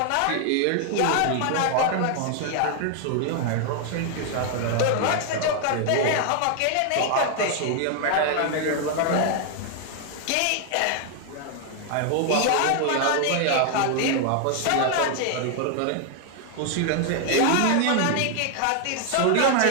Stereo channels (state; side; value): different; both; correlation 0.00